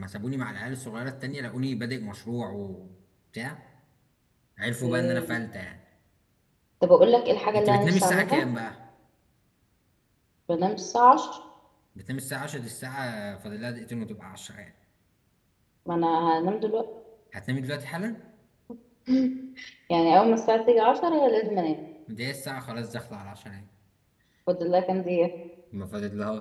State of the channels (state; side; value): identical; both; correlation 1.00